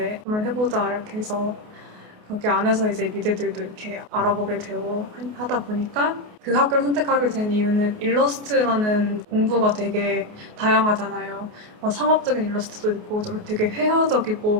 한번 해보자 이렇게 해서 거기 안에서 이제 미대들도 이렇게 알아보게 되고 하다 보니까 그 학교를 선택하게 된 이유는 일러스트라는 공부가 되게 다양하잖아요. 상업적인 일러스트도 있고 좀 되게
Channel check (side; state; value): left; late; 28 ms